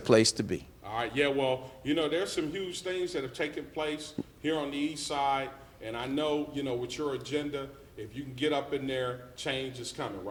to be. All right, yeah, well, there's some huge things that have taken place here on the east side, and I know, with your agenda, if you can get up in there, change is coming,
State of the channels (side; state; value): both; identical; correlation 1.00